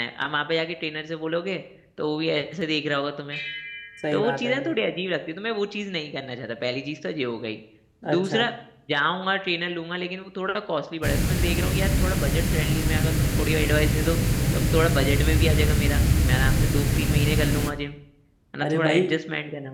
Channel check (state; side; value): identical; both; correlation 1.00